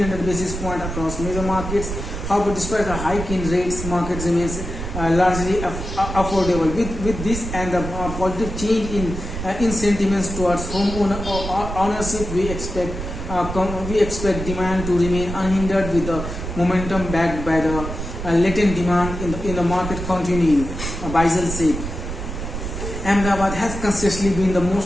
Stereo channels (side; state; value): right; noise; rumble, 7 dB below the sound